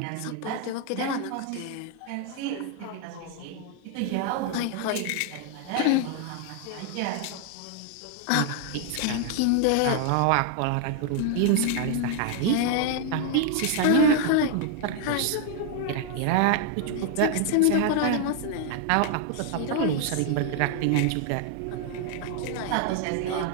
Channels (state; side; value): different; both; correlation 0.00